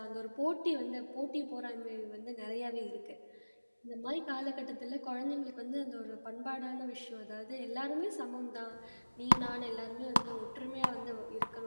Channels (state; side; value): inverted; both; correlation -1.00